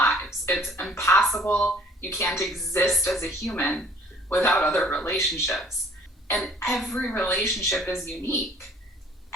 It's impossible. You can't exist as a human without other relationships. And every relationship is unique.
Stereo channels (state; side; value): normal; both; correlation 0.54